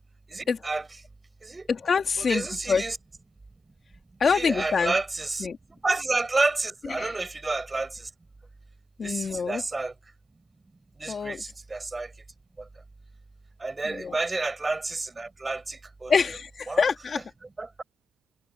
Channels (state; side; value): normal; both; correlation 0.90